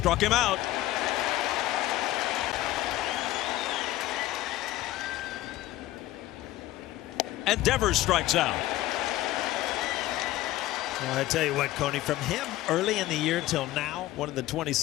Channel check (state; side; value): quieter; right; 15.9 dB